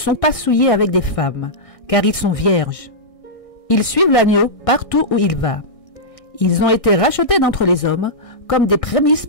pas souillés avec des femmes, car ils sont vierges. Ils suivent l'agneau partout où il va. Ils ont été rachetés d'entre les hommes comme des prémices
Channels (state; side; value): late; right; 1.6 ms